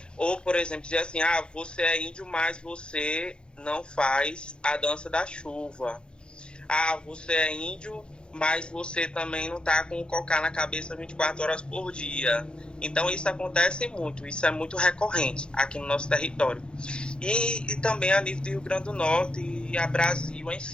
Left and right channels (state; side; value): late; right; 0.051 ms